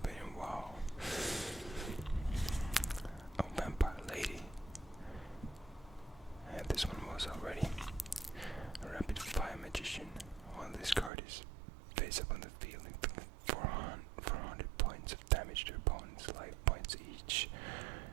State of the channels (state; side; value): drops out; left; at 11.1 s